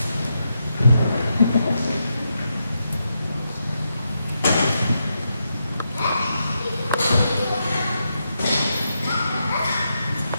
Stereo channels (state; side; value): inverted; both; correlation -0.84